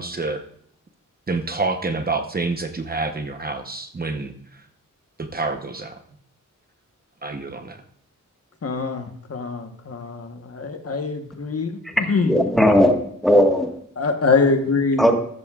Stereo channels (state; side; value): normal; both; correlation 0.48